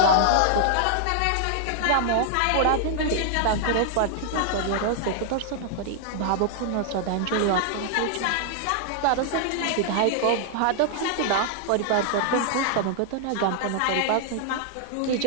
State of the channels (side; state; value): both; different; correlation -0.01